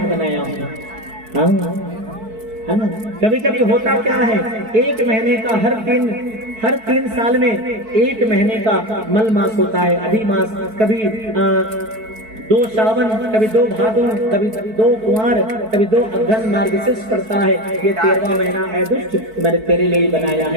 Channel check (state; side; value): late; left; 4.6 ms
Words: बनाया हूँ, है ना। कभी कभी होता क्या है, 1 महीने का हर 3 साल में 1 महीने का मल मास होता है, अधि मास, कभी 2 सावन, कभी 2 भादों, कभी 2 कुंवार, कभी 2 अघन मार्गशीर्ष पड़ता है। ये 13वां महीना है दुष्ट, मैंने तेरे लिए ही बनाया